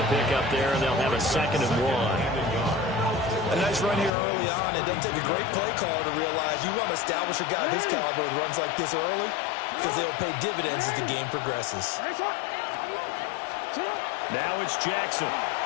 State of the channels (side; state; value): right; drops out; at 4.1 s